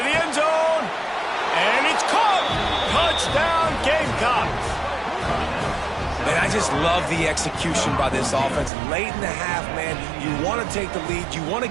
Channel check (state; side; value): drops out; left; at 8.7 s